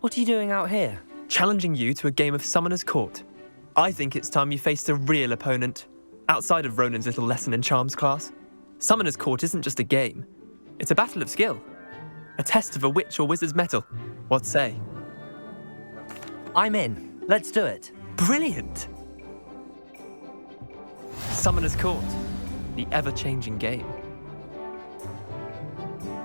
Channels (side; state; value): both; inverted; correlation -1.00